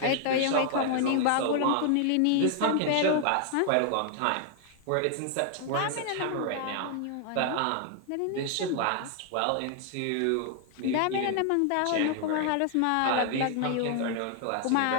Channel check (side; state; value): both; different; correlation 0.00